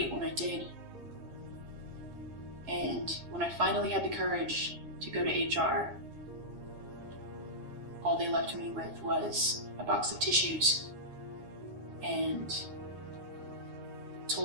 when I did. And when I finally had the courage to go to HR, all they left me with was a box of tissues and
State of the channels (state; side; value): late; left; 9.6 ms